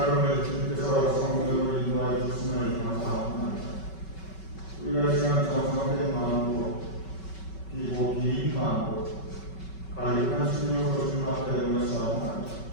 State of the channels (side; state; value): right; late; 5.3 ms